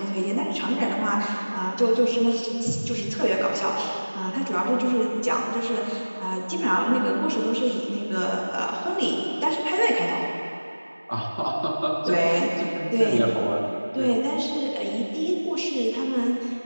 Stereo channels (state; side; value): inverted; both; correlation -1.00